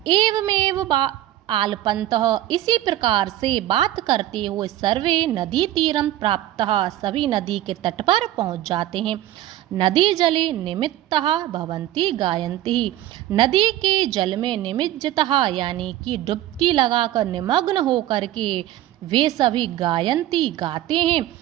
एवमेव आलपन्तः, इसी प्रकार से बात करते हुए सर्वे नदी तीरम प्राप्तः, सभी नदी के तट पर पहुंच जाते हैं। नदी जले निमित्तः भवन्ति गायन्ति, नदी के जल में निमज्जितः यानी कि डुबकी लगाकर निमग्न होकर के वे सभी गायन्ति गाते हैं।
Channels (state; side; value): quieter; left; 13.9 dB